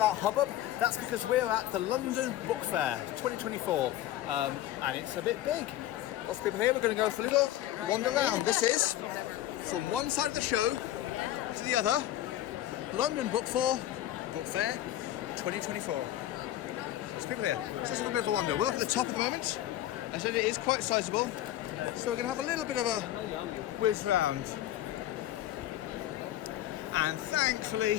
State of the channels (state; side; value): quieter; right; 13.4 dB